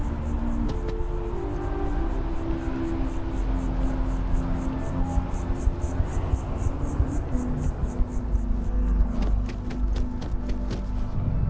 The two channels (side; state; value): both; identical; correlation 1.00